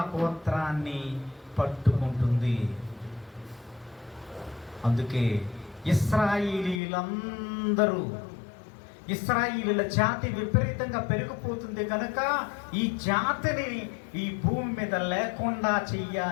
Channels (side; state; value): right; drops out; at 6.8 s